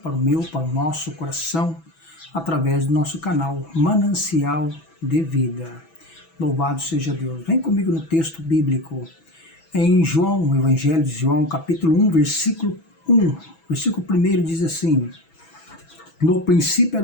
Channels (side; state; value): right; late; 6.1 ms